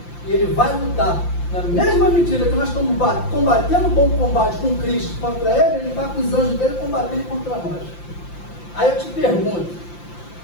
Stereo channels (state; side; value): late; right; 5.8 ms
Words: E ele vai lutar. Na mesma medida que nós estamos combatendo um bom combate com Cristo contra ele está com os anjos dele combatendo contra nós. Aí eu te pergunto,